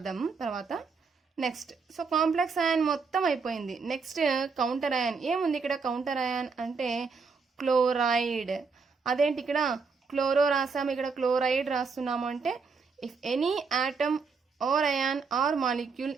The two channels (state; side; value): quieter; left; 4.9 dB